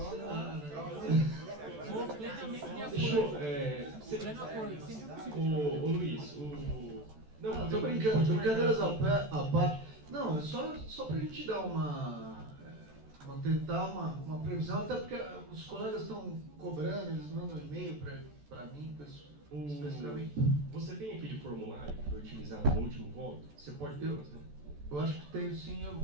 né? Vou plenamente de Deixa eu... acordo. Pleno acordo, sempre possível. Ô Luiz, Não, Tô brincando, brincadeiras à parte. Não, é só pra gente dar tentar uma previsão, até porque os colegas estão cobrando, eles mandam e-mail pra mim, especificamente. Você tem aquele formulário que foi utilizado no último voto? Você pode... Eu acho que tenho sim,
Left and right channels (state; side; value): late; left; 14 ms